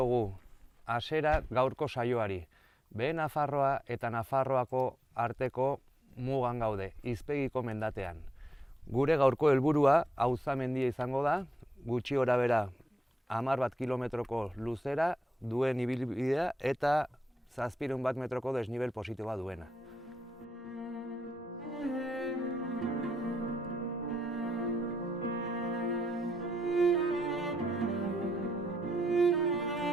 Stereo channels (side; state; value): both; normal; correlation 0.82